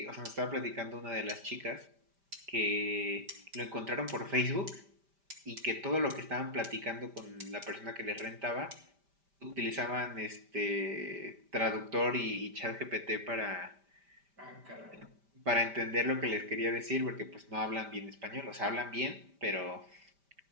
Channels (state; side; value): late; left; 5.1 ms